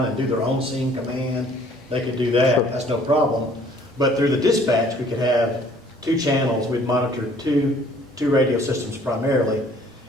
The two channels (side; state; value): both; normal; correlation 0.57